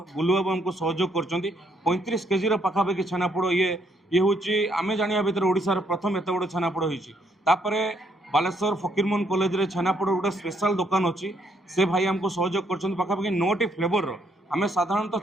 बुलुबाबू आमको सहयोग कर 35 केजी पाखापाखि छेनापोड़ ये हूँ आम जाना भितर ओडिशार प्रथम एत बड़ छेनापोड़ होपर बालेश्वर फकीरमोहन कॉलेज रे छेनापोड़ गोटे स्पेशल दुकान अच्छी से भाई आमको सहयोग कर पाखापाखि 9टी फ्लेवर आम साधारणतः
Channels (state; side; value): normal; both; correlation 0.71